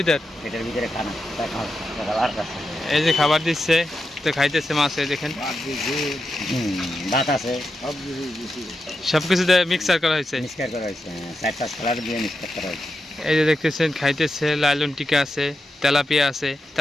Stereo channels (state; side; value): normal; both; correlation 0.88